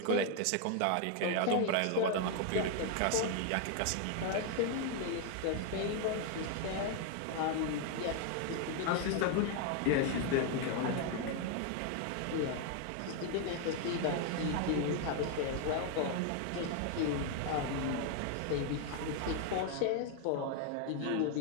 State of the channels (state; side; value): different; both; correlation 0.01